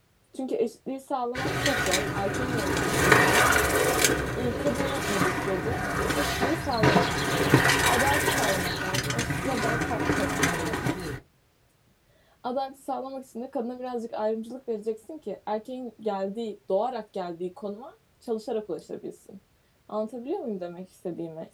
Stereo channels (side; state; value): both; identical; correlation 1.00